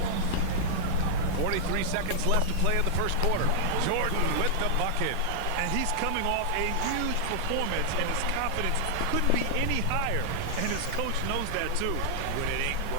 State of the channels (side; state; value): both; different; correlation -0.01